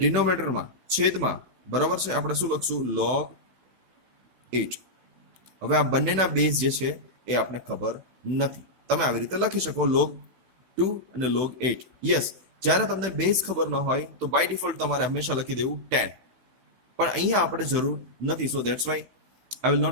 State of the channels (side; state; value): left; late; 16 ms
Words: છેદમાં બરાબર છે આપણે શું લખશું? log 8. હવે આ બંનેના બેઝ જે છે એ આપણે ખબર નથી. તમે આવી રીતે લખી શકો log 2 અને log 8. યસ, જ્યારે તમને બેઝ ખબર ન હોય તો બાય ડિફોલ્ટ તમારે હંમેશા લખી દેવું 10, પણ અહીંયા આપણે જરૂર નથી. So that's why I will